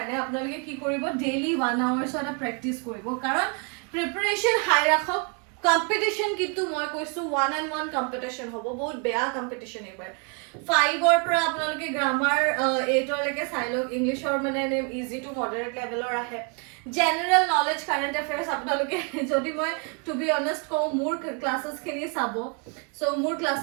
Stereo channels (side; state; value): left; quieter; 36.0 dB